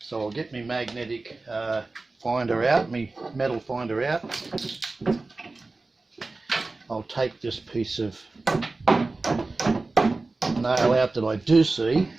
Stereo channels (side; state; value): left; quieter; 3.4 dB